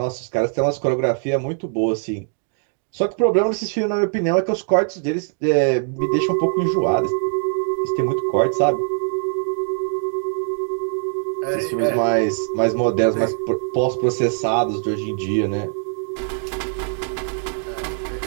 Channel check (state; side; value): silent; left; digital silence